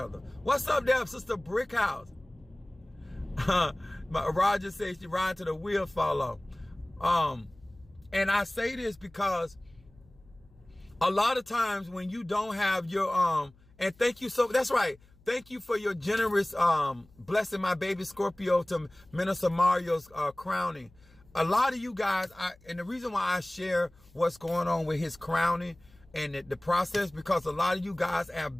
What's up there, Sister Brickhouse? Roger says she ride till the wheel fall off. And I say this because a lot of times when you don't have your and thank you that's right. Thank you for your generous blessing my baby Scorpio to Minister Mario's crowning. A lot of you guys, and the reason why I share what's going on with his crowning and the process, because a lot of you guys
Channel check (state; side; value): noise; left; hum, 28 dB below the sound